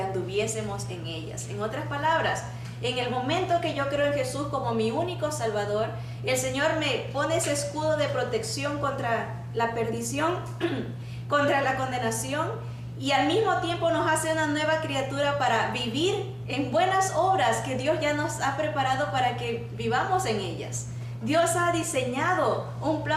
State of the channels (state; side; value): identical; both; correlation 1.00